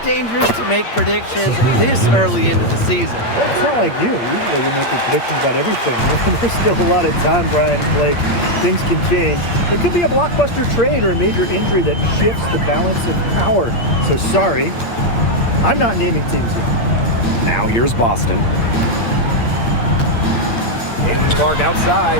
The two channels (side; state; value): right; late; 8.6 ms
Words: to make predictions this early into the season. It's not like you. Usually you're making predictions about everything. There's still a lot of time, Brian and Blake. Things can change. There could be a blockbuster trade or a major injury that shifts the balance of power. So sorry, I'm not naming teams yet. Now here's Boston. Caitlin Clark